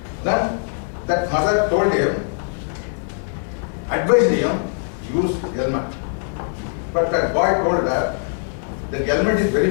Then that mother told him, advised him, use helmet. But that boy told her, the helmet is very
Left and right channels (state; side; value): silent; right; 65 dB below the other